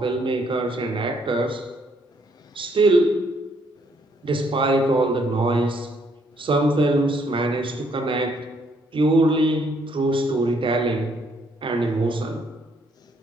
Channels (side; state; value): both; normal; correlation 0.69